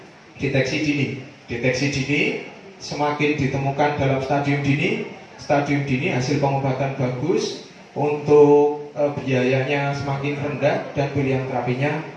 deteksi dini. Deteksi dini semakin ditemukan dalam stadium dini hasil pengobatan bagus, untuk biayanya semakin rendah dan pilihan terapinya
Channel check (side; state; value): both; identical; correlation 1.00